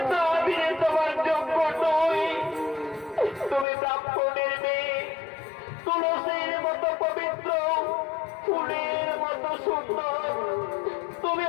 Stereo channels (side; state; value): right; drops out; at 3.7 s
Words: আমি তোমার যোগ্য নই। তুমি ব্রাহ্মণের মেয়ে, তুলসীর মতো পবিত্র, ফুলের মতো সুন্দর। তুমি